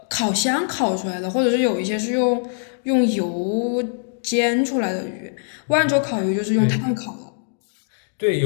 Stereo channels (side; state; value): right; silent; digital silence